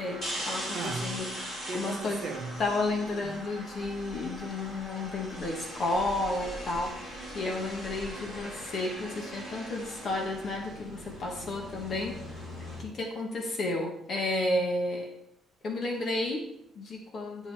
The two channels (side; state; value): both; normal; correlation 0.70